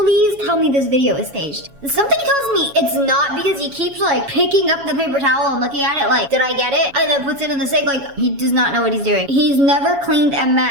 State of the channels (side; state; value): left; late; 7.2 ms